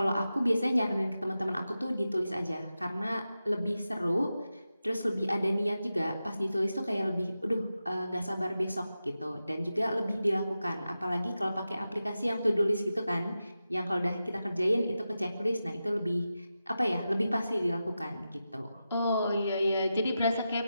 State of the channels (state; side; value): inverted; both; correlation -0.91